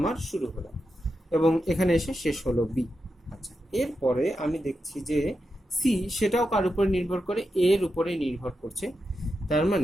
শুরু হলো এবং এখানে এসে শেষ হলো বি। আচ্ছা, এরপরে আমি দেখছি যে সি সেটাও কার উপরে নির্ভর করে, এর উপরে নির্ভর করছে। তার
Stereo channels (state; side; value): normal; both; correlation 0.88